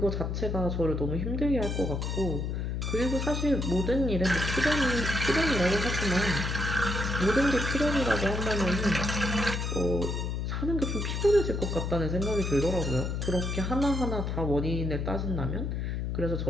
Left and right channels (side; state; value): left; noise; hum, 2 dB below the sound